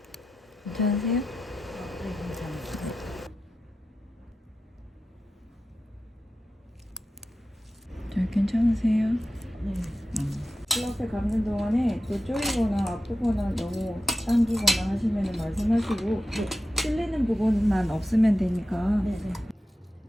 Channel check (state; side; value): normal; both; correlation 0.91